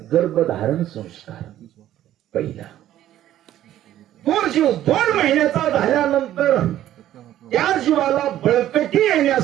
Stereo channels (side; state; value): left; quieter; 12.6 dB